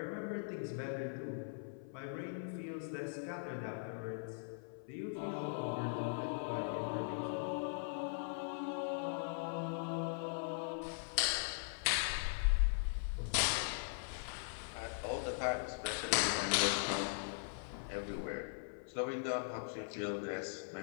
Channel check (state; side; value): silent; right; 51 dB below the other